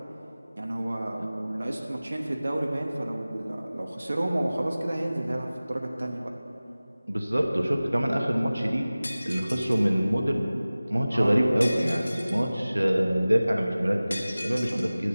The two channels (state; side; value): inverted; both; correlation -0.98